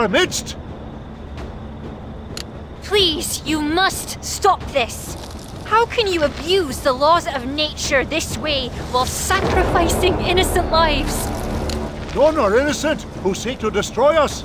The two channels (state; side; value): identical; both; correlation 1.00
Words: midst. Please, you must stop this. How can you abuse the laws of nature this way while sacrificing innocent lives? None are innocent who seek to destroy us.